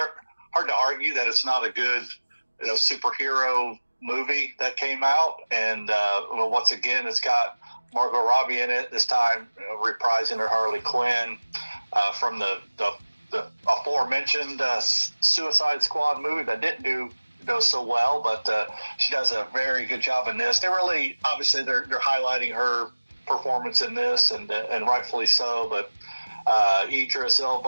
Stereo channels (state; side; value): inverted; both; correlation -1.00